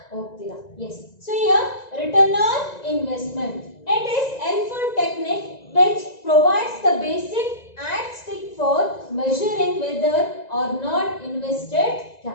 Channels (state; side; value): late; right; 1.9 ms